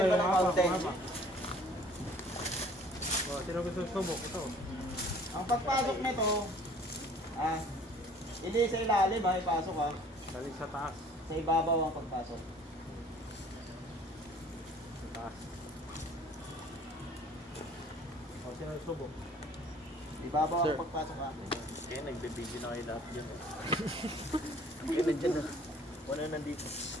mo ng mountain. O, sino gusto subok? Ito. Ang pagpasok nito, hindi sa ilalim ipasok Galing sa taas. Sa ibabaw ang pagpasok. Sa taas. O, sino subok? Ibabaw ang pagpasok Kaya nagbe-video na kayo lahat dyan. Kaya nandyan na. Wala nandito.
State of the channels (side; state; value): both; normal; correlation 0.53